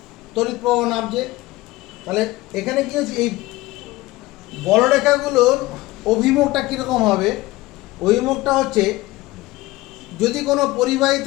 তড়িৎ প্রবাহ নামছে, তাহলে এখানে কি হচ্ছে, এই বলরেখাগুলোর অভিমুখটা কীরকম হবে, অভিমুখটা হচ্ছে যদি কোনো পরিবাহী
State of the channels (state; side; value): quieter; right; 19.0 dB